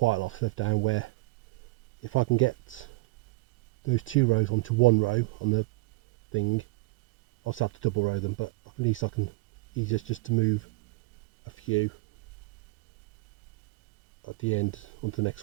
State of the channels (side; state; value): left; quieter; 23.3 dB